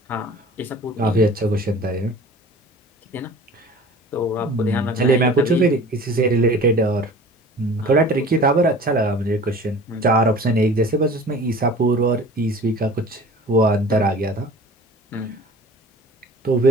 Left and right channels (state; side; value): normal; both; correlation 0.43